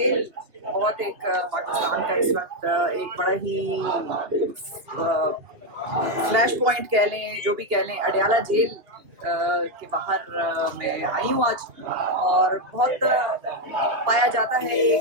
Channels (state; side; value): late; left; 2.7 ms